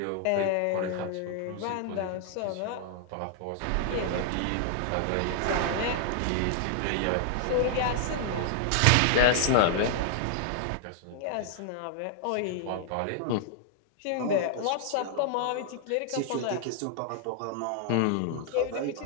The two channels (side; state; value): both; different; correlation 0.00